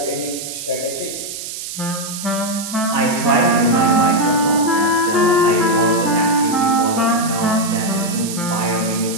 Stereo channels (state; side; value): noise; right; hiss, 8 dB below the sound